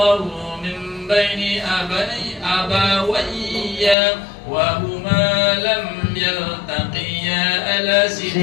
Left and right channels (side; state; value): right; drops out; at 4.0 s